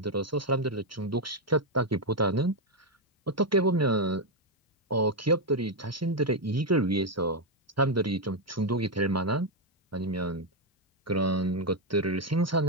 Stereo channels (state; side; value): normal; both; correlation 0.03